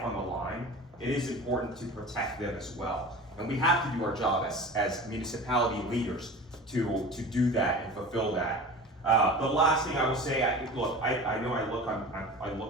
on the line, it is important to protect them as well. And we have to do our job as municipality leaders to do that and fulfill that. The last thing I will say, I know I look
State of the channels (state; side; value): normal; both; correlation 0.36